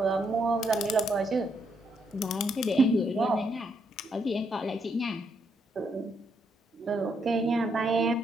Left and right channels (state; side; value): normal; both; correlation 0.76